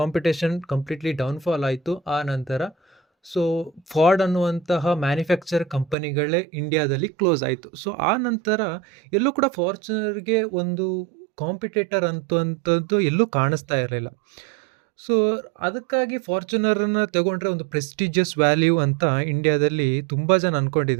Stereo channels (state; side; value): drops out; left; at 6.0 s